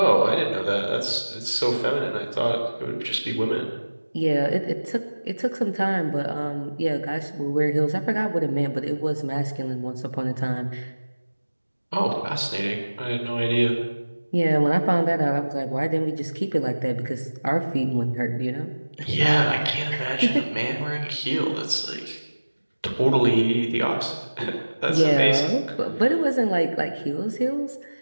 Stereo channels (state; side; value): inverted; both; correlation -1.00